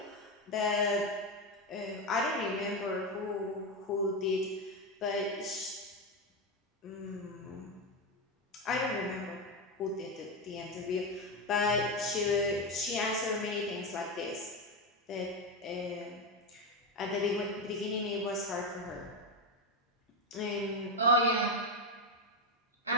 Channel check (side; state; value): both; normal; correlation 0.11